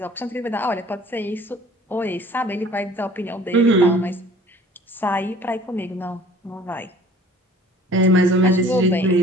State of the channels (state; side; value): normal; both; correlation 0.50